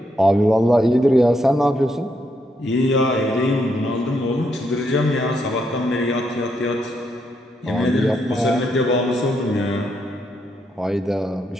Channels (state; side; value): normal; both; correlation 0.78